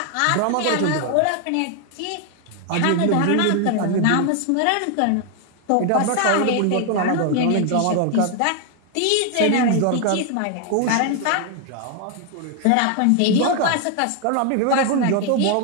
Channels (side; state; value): both; different; correlation 0.00